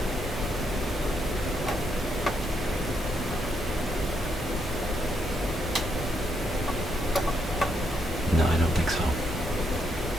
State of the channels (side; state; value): both; normal; correlation 0.77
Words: No, I don't think so.